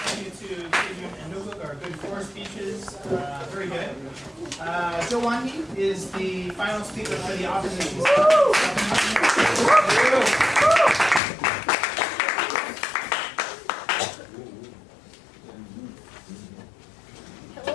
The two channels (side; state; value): right; drops out; at 11.2 s